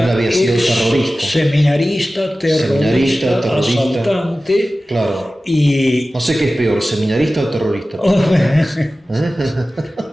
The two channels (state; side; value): normal; both; correlation 0.96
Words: sido terrorista. Seminarista, terrorista, asaltante. Claro. Y no sé qué es peor, seminarista o terrorista.